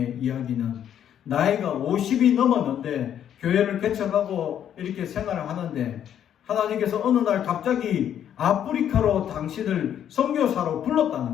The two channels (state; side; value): quieter; right; 9.8 dB